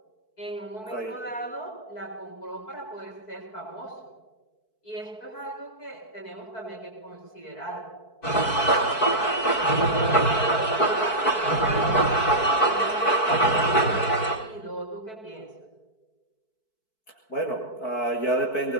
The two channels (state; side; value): late; right; 4.6 ms